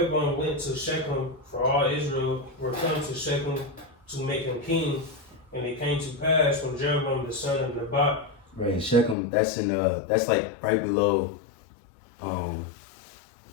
went to Shechem, for all Israel were come to Shechem to make him king. And it came to pass when Jeroboam the son of Nebat. Right, in Shechem, that's that's like right below.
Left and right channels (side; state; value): right; drops out; at 9.2 s